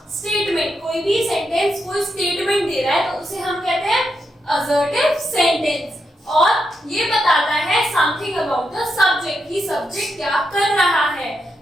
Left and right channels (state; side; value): normal; both; correlation 0.83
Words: स्टेटमेंट, कोई भी सेंटेंस कोई स्टेटमेंट दे रहा है तो उसे हम कहते हैं असर्टिव सेंटेंस, और ये बताता है समथिंग अबाउट द सब्जेक्ट, कि सब्जेक्ट क्या कर रहा है,